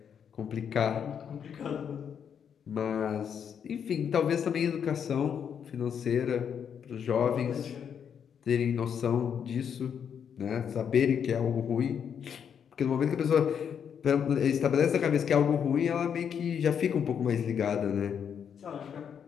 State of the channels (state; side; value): quieter; right; 7.8 dB